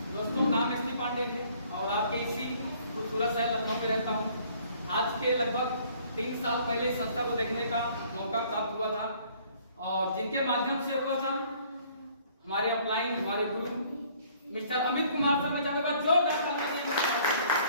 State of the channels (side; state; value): both; inverted; correlation -0.58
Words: दोस्तों, नाम एसपी पांडे है और आपके इसी खूबसूरत शहर लखनऊ में रहता हूं। आज के लगभग 3 साल पहले इस संस्था को देखने का मौका प्राप्त हुआ था और जिनके माध्यम से हुआ था हमारे अपलाइन, हमारे गुरु मिस्टर अमित कुमार सर, में चाहूंगा जोरदार तालियां।